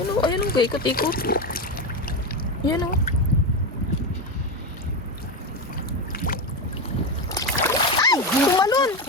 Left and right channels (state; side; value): normal; both; correlation 0.15